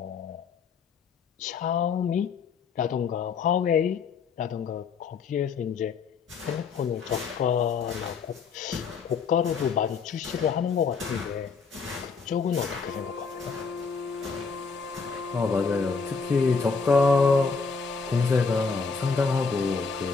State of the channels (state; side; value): quieter; right; 5.2 dB